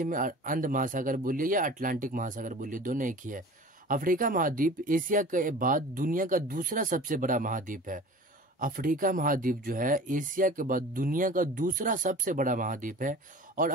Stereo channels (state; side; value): normal; both; correlation 0.40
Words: में अंध महासागर बोलिए या अटलांटिक महासागर बोलिए, दोनों एक ही है। अफ्रीका महाद्वीप एशिया के बाद दुनिया का दूसरा सबसे बड़ा महाद्वीप है। अफ्रीका महाद्वीप जो है एशिया के बाद दुनिया का दूसरा सबसे बड़ा महाद्वीप है, और